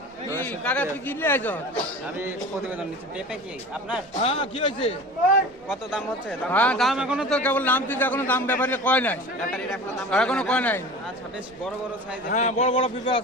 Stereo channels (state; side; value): normal; both; correlation 0.37